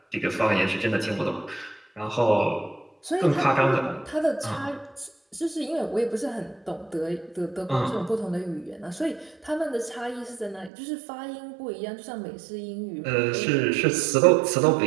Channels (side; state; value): left; drops out; at 10.7 s